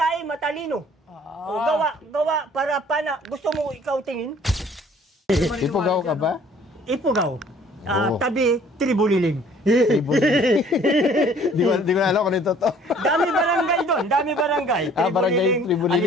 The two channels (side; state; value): both; normal; correlation 0.55